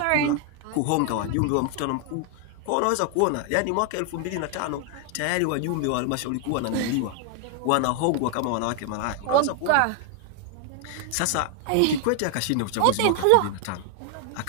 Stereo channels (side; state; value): both; different; correlation 0.00